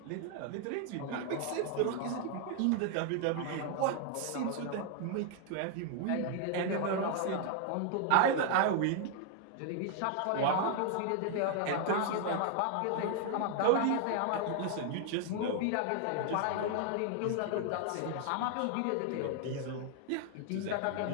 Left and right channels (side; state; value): both; different; correlation 0.00